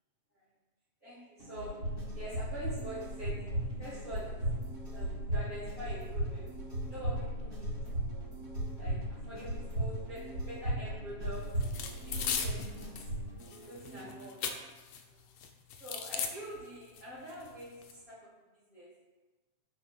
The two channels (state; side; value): late; right; 8.0 ms